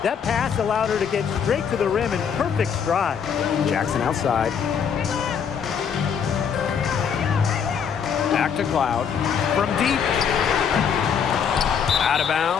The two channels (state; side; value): quieter; right; 7.3 dB